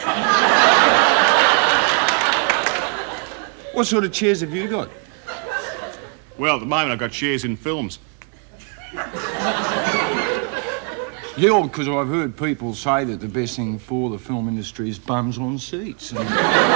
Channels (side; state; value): left; quieter; 38.0 dB